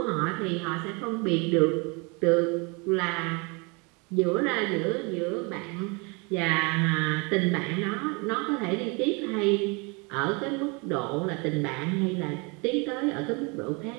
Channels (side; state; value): left; quieter; 30.1 dB